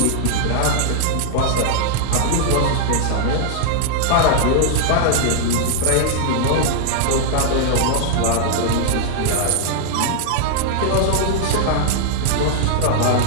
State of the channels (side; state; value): both; different; correlation -0.01